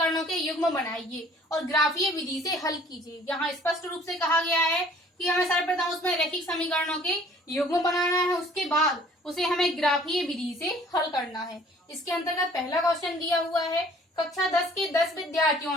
के युग्म बनाइए और ग्राफीय विधि से हल कीजिए। यहाँ स्पष्ट रूप से कहा गया है कि हमें सर्वप्रथम उसमें रैखिक समीकरणों के युग्म बनाना है, उसके बाद उसे हमें ग्राफीय विधि से हल करना है। इसके अंतर्गत पहला क्वेश्चन दिया हुआ है, कक्षा 10 के 10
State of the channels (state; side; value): normal; both; correlation 0.54